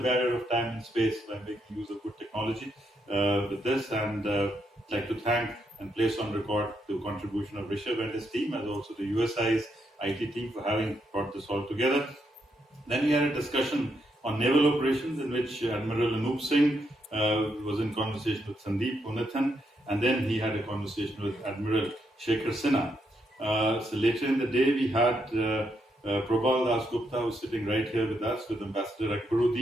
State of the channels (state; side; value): normal; both; correlation 0.78